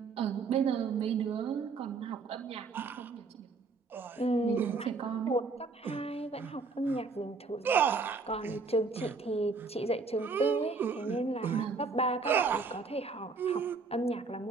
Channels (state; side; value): quieter; left; 4.4 dB